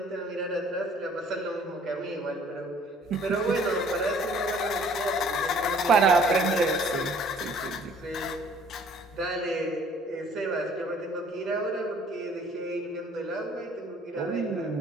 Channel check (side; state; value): both; normal; correlation 0.56